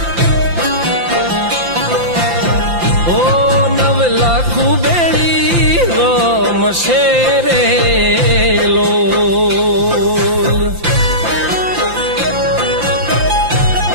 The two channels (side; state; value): left; late; 5.8 ms